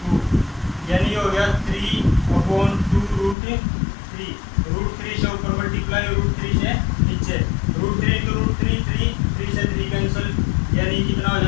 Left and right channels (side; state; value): right; drops out; at 3.4 s